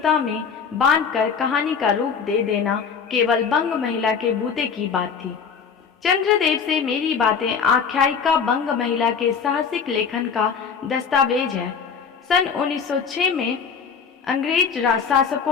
में बांधकर कहानी का रूप दे देना केवल बंग महिला के बूते की बात थी। चंद्रदेव से मेरी बातें आख्यायिका बंग महिला के साहसिक लेखन का दस्तावेज है। सन 1906 में अंग्रेज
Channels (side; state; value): right; quieter; 6.3 dB